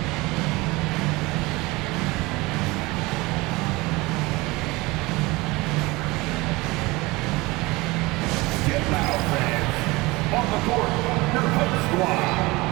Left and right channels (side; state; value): left; quieter; 22.4 dB